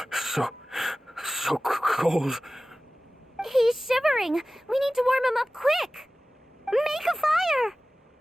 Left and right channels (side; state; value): both; normal; correlation 0.97